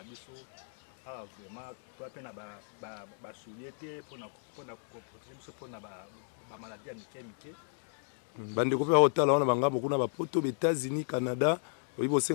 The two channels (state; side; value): silent; right; digital silence